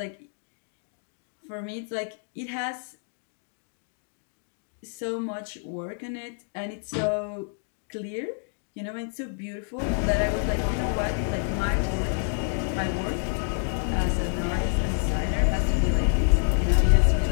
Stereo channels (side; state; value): right; silent; 60 dB below the other